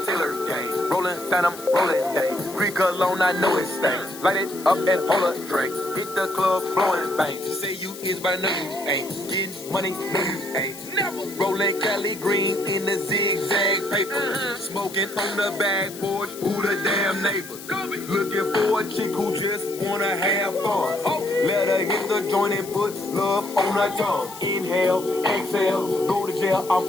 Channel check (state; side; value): noise; left; hiss, 15 dB below the sound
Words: Taylor Gang. Rolling Phantom, rolling day. Greek cologne, I know it's stank. Light it up and hold a drink. Hit the club, blowing bang. You say you is, but I know you ain't. Getting money, no you ain't. Never. Rolling Cali Green in the zigzag paper. Smoking on the back porch, who the damn neighbors? Looking for a chick who just wanna have fun. Let her hit the joint and put love on her tongue. Inhale, exhale, go to jail, I'm